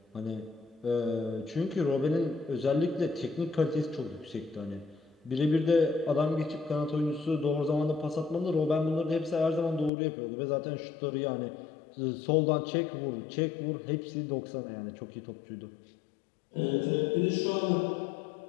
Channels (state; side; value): drops out; right; at 9.9 s